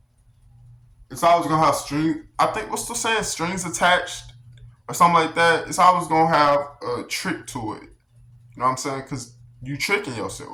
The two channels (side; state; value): both; identical; correlation 1.00